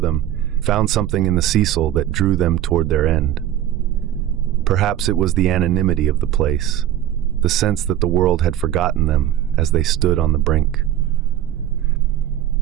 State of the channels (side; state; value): left; quieter; 12.0 dB